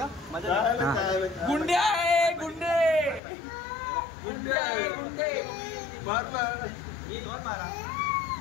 गुंडे ये कौन मारा?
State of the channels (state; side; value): drops out; right; at 3.2 s